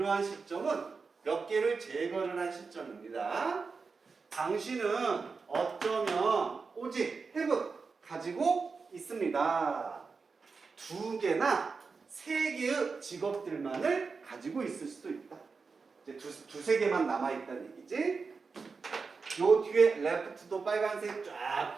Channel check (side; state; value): left; quieter; 4.7 dB